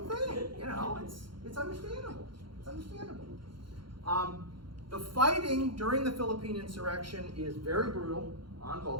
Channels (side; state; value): left; late; 0.73 ms